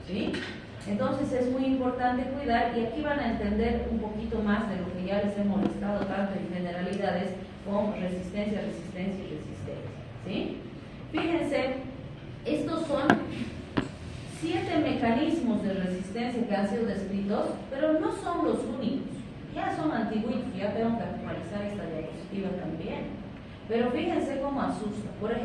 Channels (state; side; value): identical; both; correlation 1.00